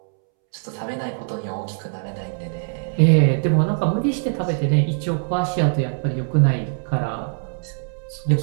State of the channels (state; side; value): silent; left; 64 dB below the other